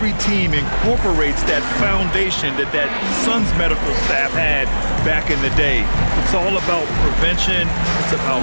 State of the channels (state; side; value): inverted; both; correlation -1.00